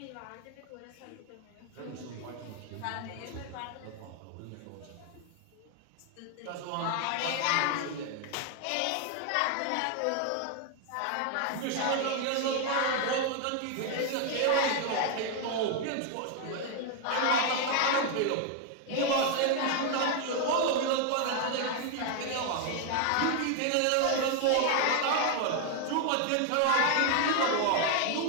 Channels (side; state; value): both; different; correlation 0.00